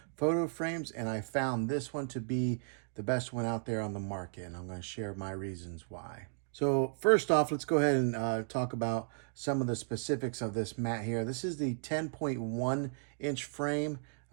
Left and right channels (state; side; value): silent; left; digital silence